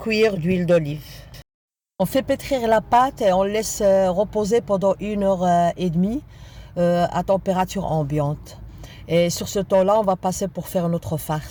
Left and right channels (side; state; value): both; identical; correlation 1.00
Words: d'huile d'olive. On fait pétrir la pâte et on laisse reposer pendant 1 heure et demie à température ambiante. Et sur ce temps-là, on va passer pour faire notre